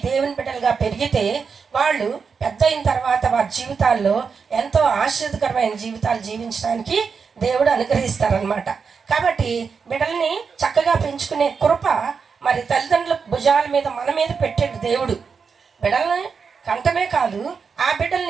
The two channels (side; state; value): left; quieter; 5.7 dB